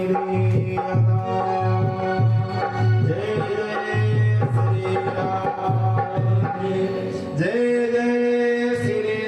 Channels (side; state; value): both; identical; correlation 1.00